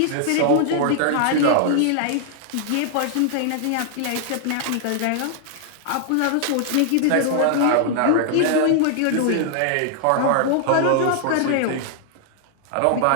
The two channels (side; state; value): both; different; correlation 0.00